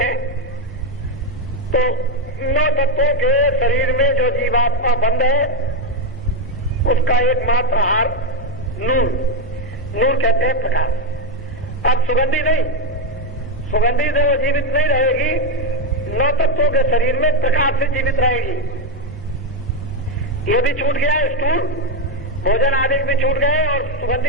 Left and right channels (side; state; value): both; normal; correlation 0.05